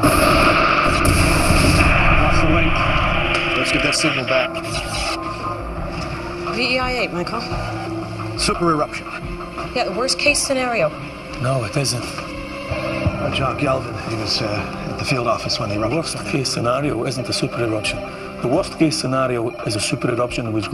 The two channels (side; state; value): both; identical; correlation 1.00